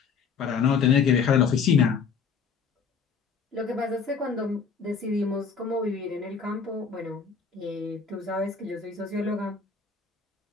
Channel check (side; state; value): right; quieter; 5.8 dB